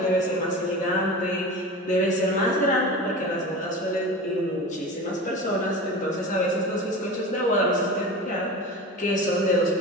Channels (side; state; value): both; normal; correlation 0.31